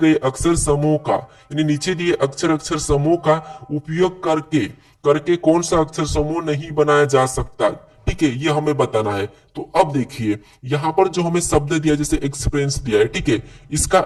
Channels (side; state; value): both; identical; correlation 1.00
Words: अक्षर समूह का, यानी नीचे दिए अक्षर समूह का उपयोग करके करके कौन सा अक्षर समूह नहीं बनाया जा सकता। ठीक है, ये हमें बताना है। तो अब देखिए यहां पर जो हमें शब्द दिया, जैसे एक्सपीरियंस दिया है, ठीक है, इसका